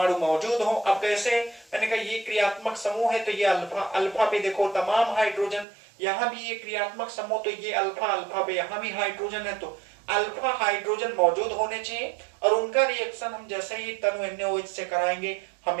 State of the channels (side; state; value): left; drops out; at 5.7 s